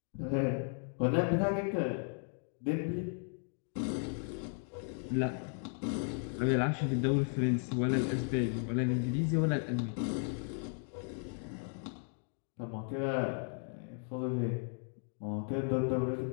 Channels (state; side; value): silent; right; 54 dB below the other